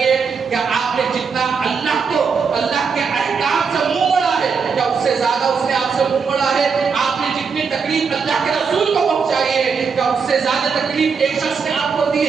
کیا آپ نے جتنا اللہ کو اللہ کے احکام سے منہ موڑا ہے کیا اس سے زیادہ اس نے آپ سے منہ موڑا ہے؟ آپ نے جتنی تکلیف اللہ کے رسول کو پہنچائی ہے کیا اس سے زیادہ تکلیف ایک شخص نے آپ کو دی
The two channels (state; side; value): quieter; left; 5.6 dB